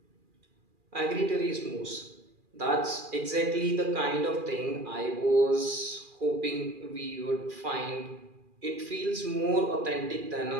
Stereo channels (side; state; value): left; late; 2.4 ms